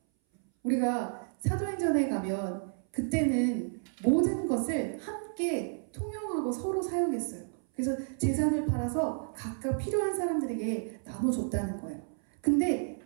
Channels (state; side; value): silent; left; 57 dB below the other